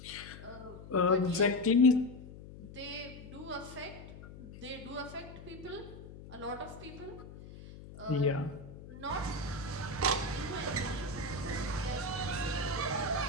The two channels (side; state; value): left; noise; hum, 15 dB below the sound